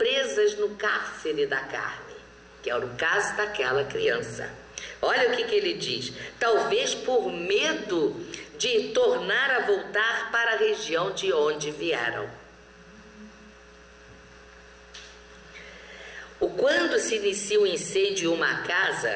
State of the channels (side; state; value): both; identical; correlation 1.00